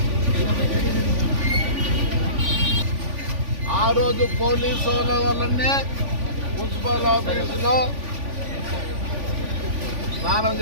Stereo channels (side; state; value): left; late; 3.5 ms